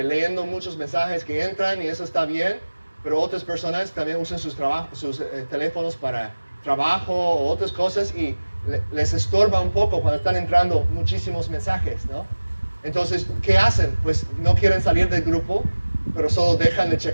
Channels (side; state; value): both; inverted; correlation -1.00